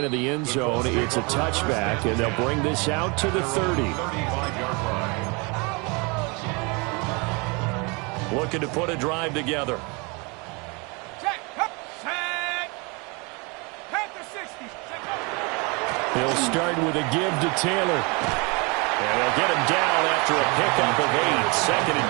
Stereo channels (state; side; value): quieter; left; 29.7 dB